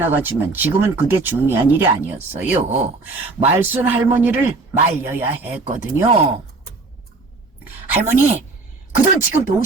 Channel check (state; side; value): quieter; left; 3.6 dB